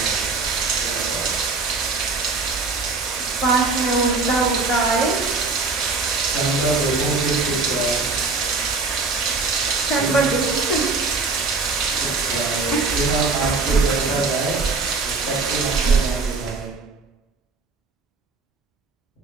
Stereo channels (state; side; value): quieter; left; 4.0 dB